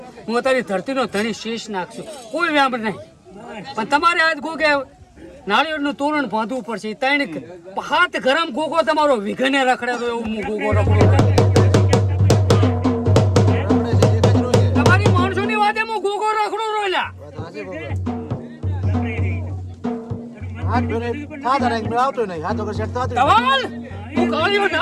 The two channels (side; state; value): both; identical; correlation 1.00